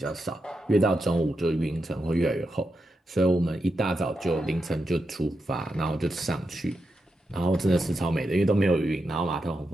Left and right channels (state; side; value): normal; both; correlation 0.86